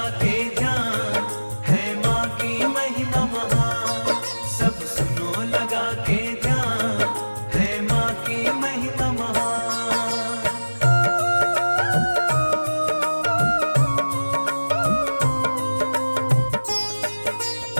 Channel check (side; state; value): both; inverted; correlation -1.00